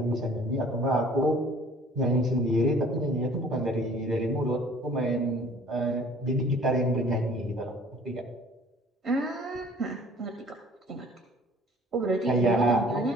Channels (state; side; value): normal; both; correlation 0.52